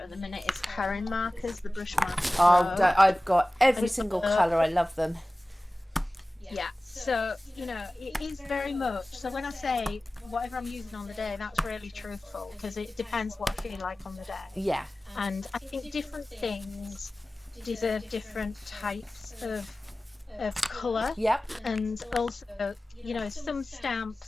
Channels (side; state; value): both; normal; correlation 0.97